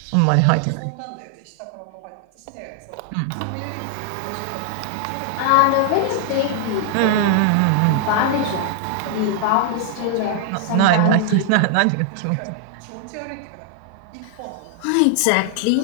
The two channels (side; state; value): both; different; correlation 0.00